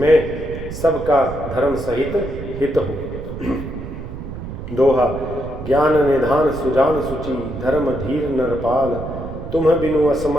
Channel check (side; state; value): right; noise; rumble, 9 dB below the sound